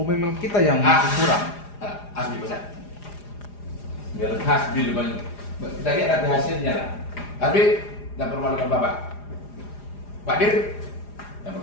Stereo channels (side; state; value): right; late; 4.9 ms